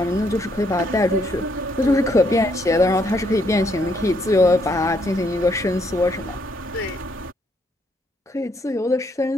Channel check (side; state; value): both; normal; correlation 0.72